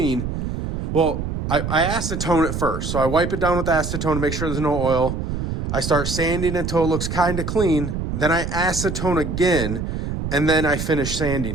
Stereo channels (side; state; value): right; noise; rumble, 4 dB below the sound